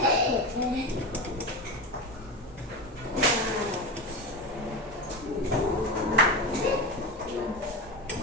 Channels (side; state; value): both; normal; correlation 0.21